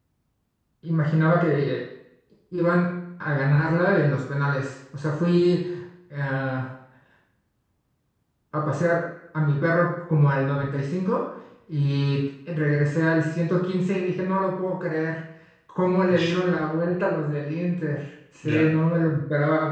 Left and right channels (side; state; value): both; identical; correlation 1.00